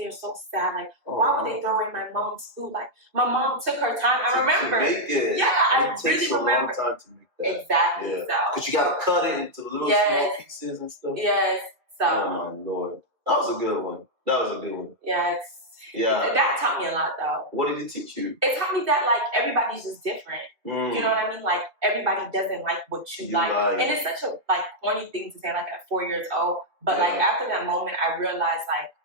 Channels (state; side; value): late; left; 2.6 ms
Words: so sad. Like, why would they throw away my mom's food? Like, my mom took her time. I remember. To make it. Yeah, I really remember. It takes a long time to make that. Exactly. Yeah. So. Because you got to cut it into little small pieces and stuff. Yes. So. Oh, my Lord. That was a good one. Yeah, that taught me a lot, though. What did it teach you? It taught me that, like, everybody's just different. You know what I mean? Like, everybody doesn't like what you like. And it's such a, like, corny thing to say, like, at 4 years old. But, like, after that moment, I realized, like,